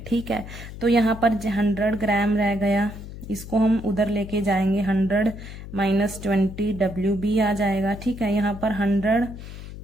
ठीक है, तो यहाँ पर 100 ग्राम रह गया, इसको हम उधर लेके जाएंगे 100 माइनस 20 WB आ जाएगा। ठीक है, यहाँ पर 100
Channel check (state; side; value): noise; left; hum, 12 dB below the sound